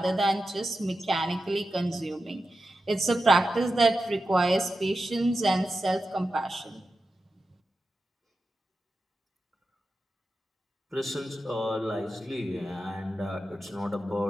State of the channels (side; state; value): both; normal; correlation 0.91